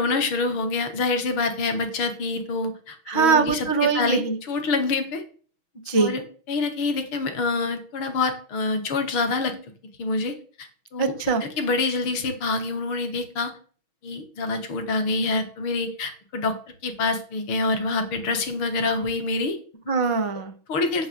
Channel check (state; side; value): late; right; 6.2 ms